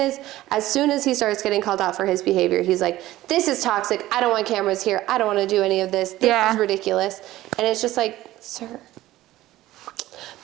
he starts getting called out for his behavior, he's like, this is toxic. I don't want cameras here. I don't want to do any of this. This is ridiculous. And it's just like, sir.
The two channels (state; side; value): quieter; left; 15.8 dB